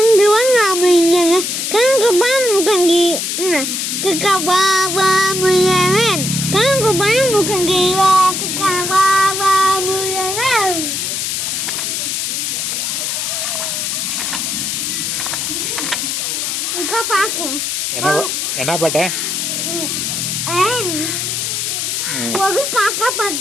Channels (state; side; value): noise; left; hiss, 1 dB below the sound